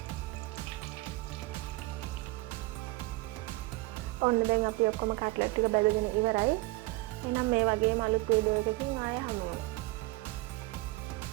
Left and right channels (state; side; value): quieter; left; 21.0 dB